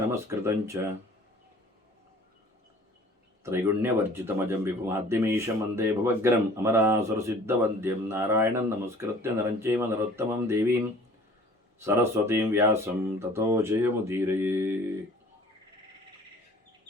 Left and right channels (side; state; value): both; normal; correlation 0.49